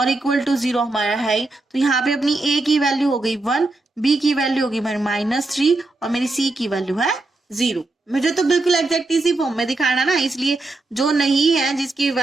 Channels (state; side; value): quieter; left; 3.0 dB